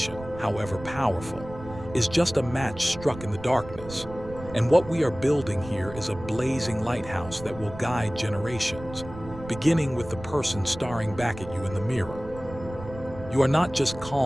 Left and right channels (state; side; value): noise; right; rumble, 14 dB below the sound